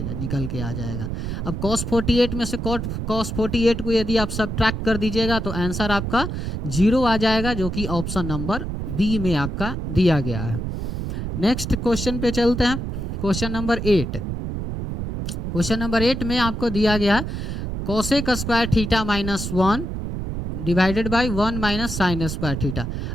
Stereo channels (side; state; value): right; noise; rumble, 4 dB below the sound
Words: निकल के आ जाएगा। अब cos 48 में से cos 48 को यदि आप सब्ट्रैक्ट कर दीजिएगा तो आंसर आपका 0 आ जाएगा, जो कि ऑप्शन नंबर बी में आपका दिया गया है। नेक्स्ट क्वेश्चन पे चलते हैं, क्वेश्चन नंबर 8। क्वेश्चन नंबर 8 में आपको दिया गया cosec square theta minus 1 divided by 1 minus sine square theta.